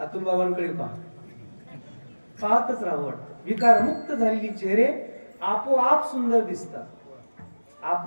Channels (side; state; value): both; inverted; correlation -1.00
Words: बाबांकडे पहा, पाहतच राहावं वाटतं. विकारमुक्त झालेली चेहरे आपोआप सुंदर दिसतात.